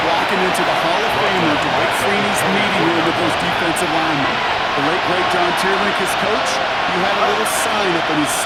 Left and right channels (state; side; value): identical; both; correlation 1.00